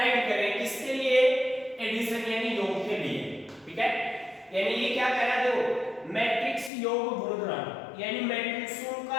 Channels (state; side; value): drops out; right; at 6.7 s